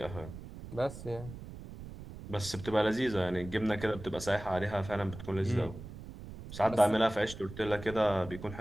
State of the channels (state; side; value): noise; right; rumble, 13 dB below the sound